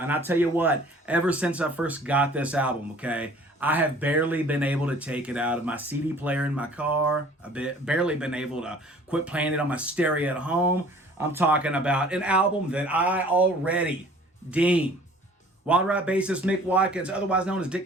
I'll tell you what, ever since I first got this album, okay, I have barely been able to take it out of my CD player in my car. I've barely been able to quit playing it on my stereo at home. I'm talking about an album that I already deem, WYLD RYDE bassist Mick Watkins, otherwise known as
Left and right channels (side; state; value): both; normal; correlation 0.51